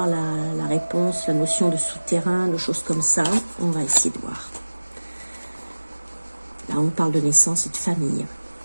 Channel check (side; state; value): both; inverted; correlation -1.00